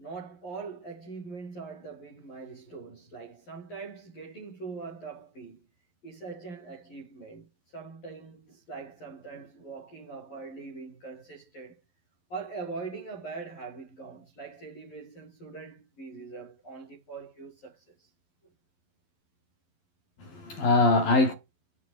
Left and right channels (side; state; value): right; late; 11 ms